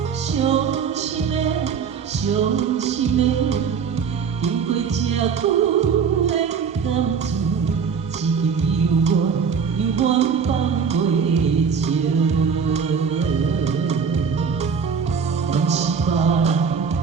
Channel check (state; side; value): quieter; left; 6.2 dB